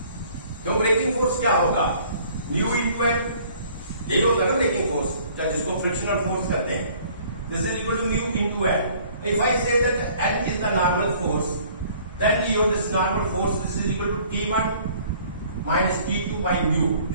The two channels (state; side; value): inverted; both; correlation -0.55